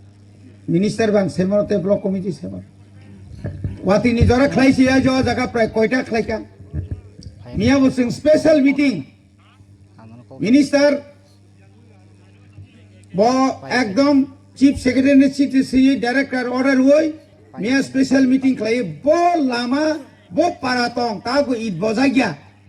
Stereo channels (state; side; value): identical; both; correlation 1.00